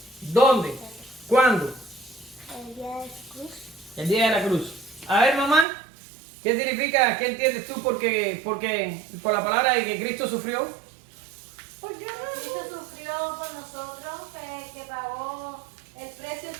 ¿Dónde? ¿Cuándo? el día de su cruz. El día de la cruz. A ver, mamá, ¿qué significa, qué entiendes tú por la palabra de que Cristo sufrió? Porque Cristo sufrió por nosotros, que pagó el precio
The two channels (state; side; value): drops out; left; at 5.7 s